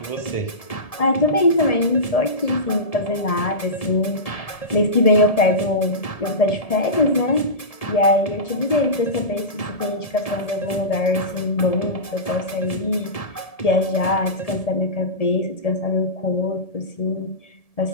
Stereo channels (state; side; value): late; right; 1.7 ms